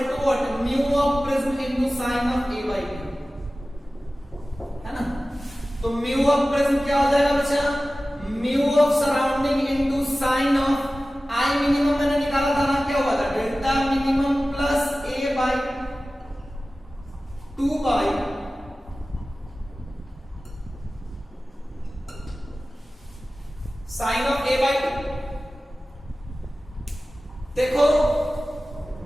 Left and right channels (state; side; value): normal; both; correlation 0.96